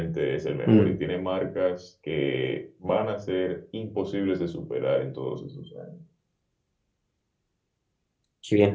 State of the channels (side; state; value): both; identical; correlation 1.00